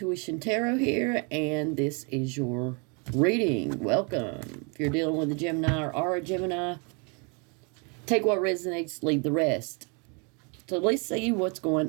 Tarot here, and this is your reading. Welcome. If you're dealing with a Gemini or are a Gemini, take what resonates, leave the rest. So let's see what's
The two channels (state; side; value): quieter; left; 34.4 dB